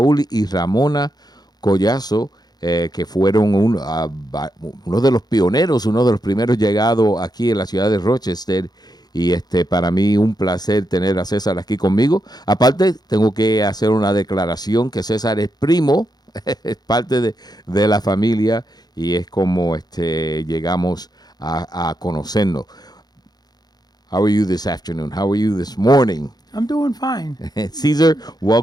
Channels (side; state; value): right; late; 0.19 ms